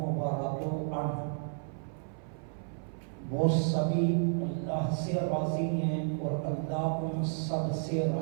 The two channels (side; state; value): left; silent; 56 dB below the other